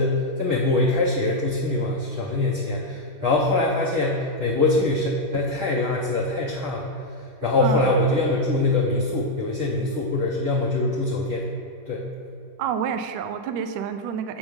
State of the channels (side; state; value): left; late; 10 ms